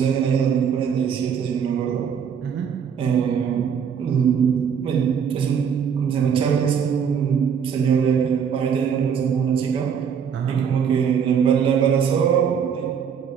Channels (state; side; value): quieter; left; 7.4 dB